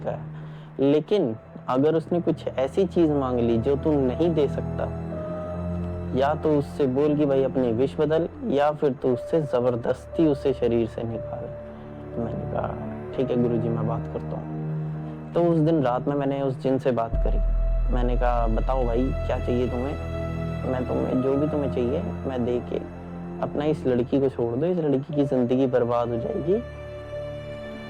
है। लेकिन अगर उसने कुछ ऐसी चीज मांग ली जो तू नहीं दे सकता, या तो उससे बोल कि भाई अपनी विश बदल, या फिर तू उससे जबरदस्ती उसे शरीर से निकाल। मैंने कहा ठीक है गुरुजी, मैं बात करता हूँ। तो उस दिन रात में मैंने उस जिन से बात करी। मैंने कहा बताओ भाई क्या चाहिए तुम्हें, मैं तुम्हें जो भी तुम्हें चाहिए मैं दे के अपना इस लड़की को छोड़ दो, इस लड़की की ज़िंदगी बर्बाद हो जाएगी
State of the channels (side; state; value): both; identical; correlation 1.00